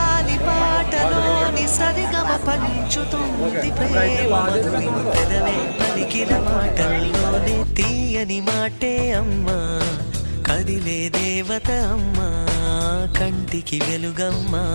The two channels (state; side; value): inverted; both; correlation -1.00